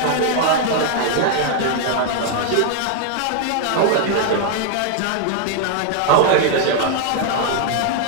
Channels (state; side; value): different; both; correlation -0.01